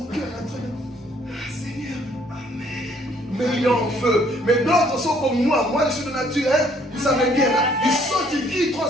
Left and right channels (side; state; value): both; normal; correlation 0.64